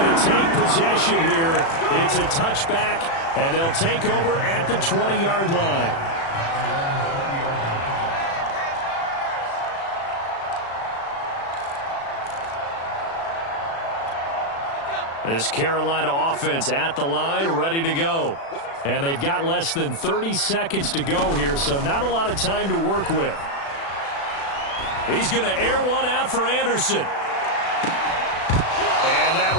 to take possession here. It's a touchback, and they'll take over at the 20-yard line. This Carolina offense at the line, ready to go. And they've got less than 30 seconds to go here, so not a lot of time to work with. He's going to air one out for Anderson. And that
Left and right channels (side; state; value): right; late; 36 ms